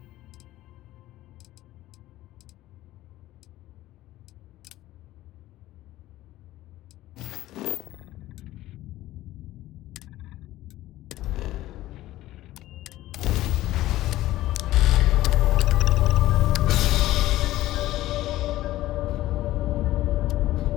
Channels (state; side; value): quieter; right; 15.6 dB